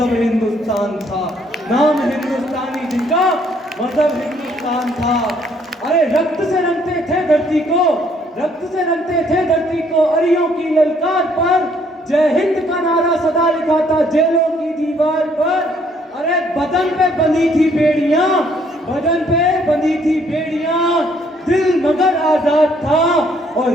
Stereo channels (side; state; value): both; normal; correlation 0.66